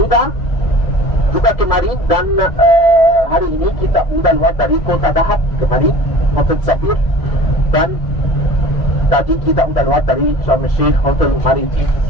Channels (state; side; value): late; right; 1.6 ms